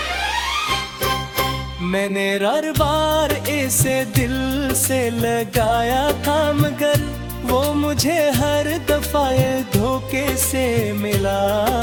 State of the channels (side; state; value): both; identical; correlation 1.00